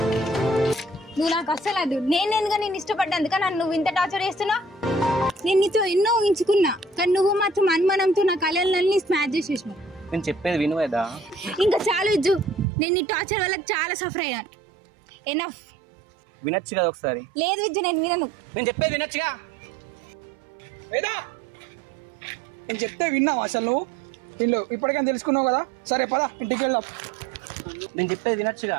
నువ్వు నాకు అస్సలు అది నేను ఎందుకు నేను ఇష్టపడ్డాను కానీ నువ్వు ఇంత టార్చర్ చేస్తున్నావు. నేను నీతో ఎన్నో ఊహించుకున్నా కానీ నువ్వు మాత్రం అనుమానంతో నా కళలన్నీ స్మాష్ చేసేసినావు. నేను చెప్పేది వినువేదా? ఇంకా చాలు విజ్జు, నేను నీ టార్చర్ వల్ల చాలా సఫర్ అయ్యాను. ఎనఫ్. వినొచ్చు కదా ఒకసారి. లేదు విజ్జు, నేను వినను. నేను చెప్పేది వినొచ్చుగా. వేదా నేను చెప్తే విన్నావు అసలు నువ్వు? వీళ్ళు ఇప్పటికైనా తెలుసుకున్నావు కదా. సరే పద ఇంటికి వెళ్దాం. నేను చెప్పేది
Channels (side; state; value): left; drops out; at 12.7 s